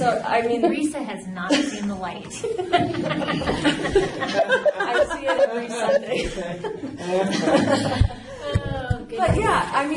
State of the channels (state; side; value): identical; both; correlation 1.00